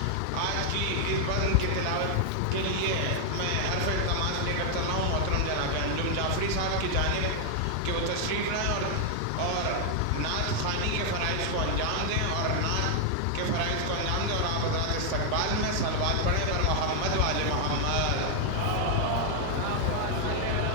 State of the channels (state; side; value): different; both; correlation 0.00